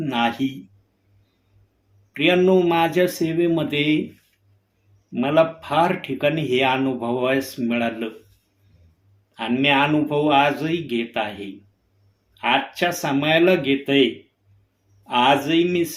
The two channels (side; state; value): both; identical; correlation 1.00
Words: नाही. प्रियांनो, माझ्या सेवेमध्ये मला फार ठिकाणी हे अनुभवायस मिळालं आणि मी अनुभव आजही घेत आहे. आजच्या समयाला घेतय. आजही मी